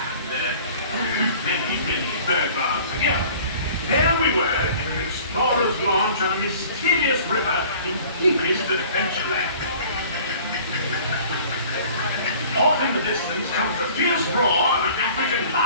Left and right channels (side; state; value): both; inverted; correlation -0.48